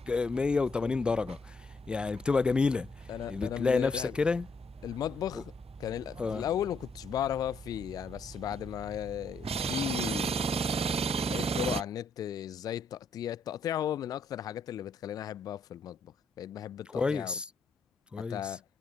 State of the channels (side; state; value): right; quieter; 3.2 dB